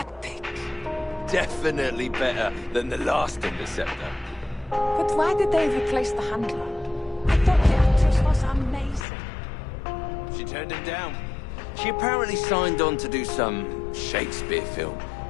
Definitely better than the last Interceptor. But why did they replace the handler? I thought the actress was amazing. She turned him down. She apparently signed on to do some Shakespeare film.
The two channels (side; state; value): right; drops out; at 9.1 s